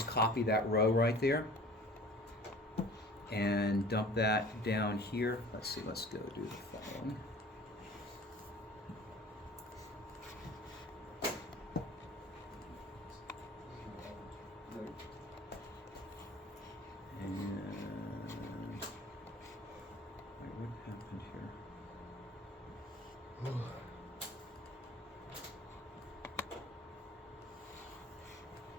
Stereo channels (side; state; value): both; normal; correlation 0.46